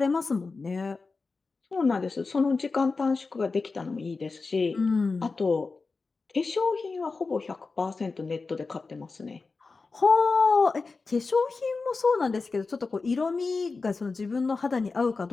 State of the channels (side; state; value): right; quieter; 4.1 dB